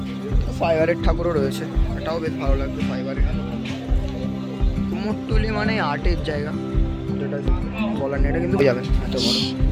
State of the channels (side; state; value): both; identical; correlation 1.00